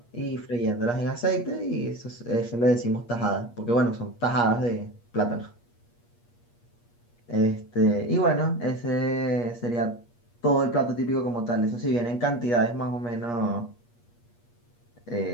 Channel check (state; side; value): late; right; 8.4 ms